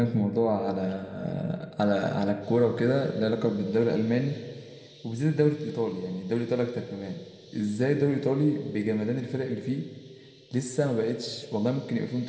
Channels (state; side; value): identical; both; correlation 1.00